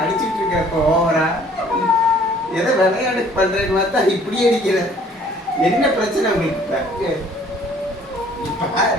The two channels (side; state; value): both; normal; correlation 0.56